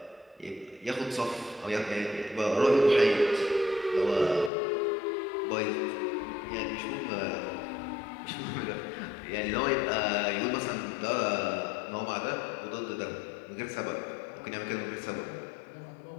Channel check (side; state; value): right; drops out; at 4.5 s